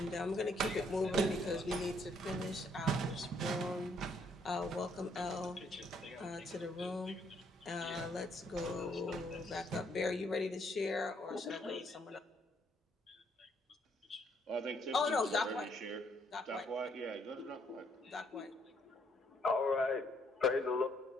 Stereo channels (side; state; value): both; normal; correlation 0.70